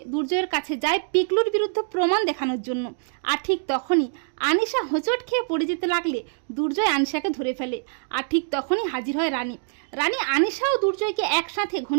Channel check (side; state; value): left; silent; digital silence